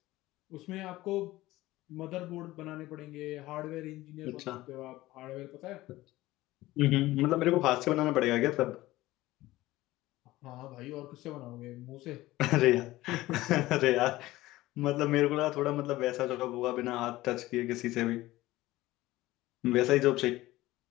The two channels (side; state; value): right; quieter; 17.5 dB